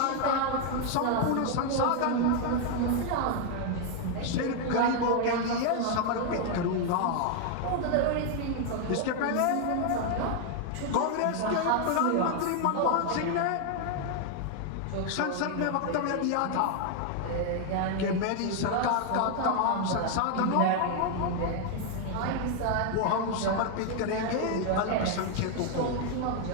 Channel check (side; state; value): both; different; correlation 0.00